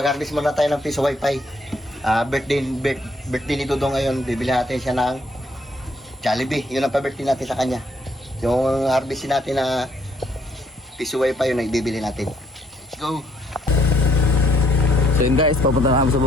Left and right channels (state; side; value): normal; both; correlation 0.68